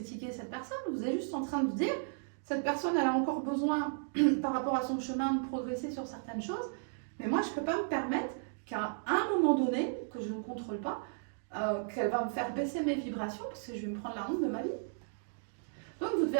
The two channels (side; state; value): left; silent; digital silence